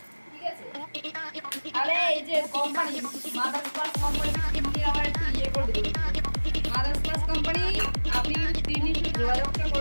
ঠিক আছে আরে এই যে কোম্পানি মাদার স্পার্স কোম্পানি তিনি আবার একটু ইয়ে করে দিল। মাদার স্পার্স কোম্পানি আপনি কিন্তু তিনি যোগাযোগটা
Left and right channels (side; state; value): both; inverted; correlation -1.00